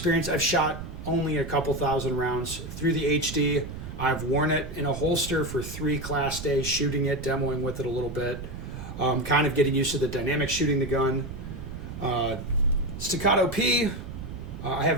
I've shot only a couple thousand rounds through the HD. I've worn it in a holster for 3 class days, shooting it, demoing with it a little bit, kind of getting used to the dynamic shooting the gun. Staccato P, I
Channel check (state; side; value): noise; right; rumble, 10 dB below the sound